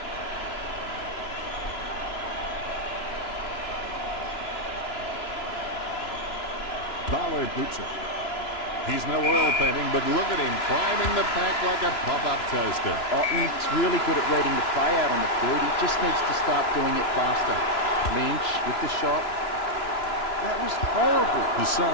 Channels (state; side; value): late; right; 3.0 ms